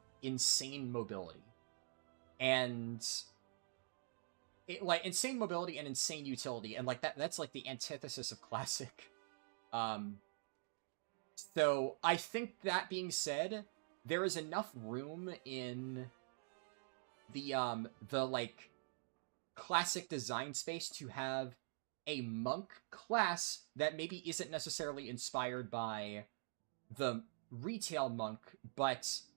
insane mobility. And like insane mobility and insane utility, and like that's like the antithesis of classic. So I think that being said, there is enough room in the like classic design space to have a monk class that maybe isn't necessarily inspired by the retail monk, but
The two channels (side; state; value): left; silent; digital silence